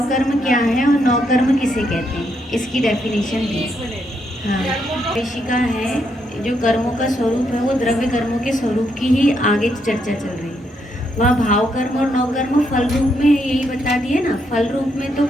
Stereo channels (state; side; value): normal; both; correlation 0.77